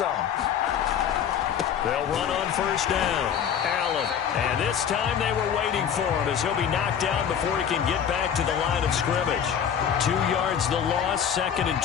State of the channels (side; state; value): right; quieter; 8.4 dB